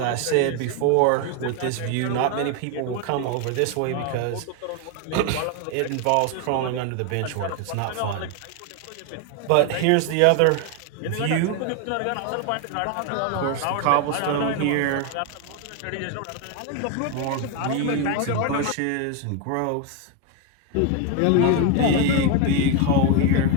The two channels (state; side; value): different; both; correlation 0.01